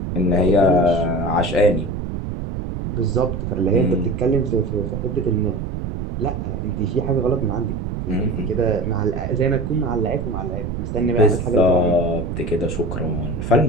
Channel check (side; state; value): right; noise; rumble, 5 dB below the sound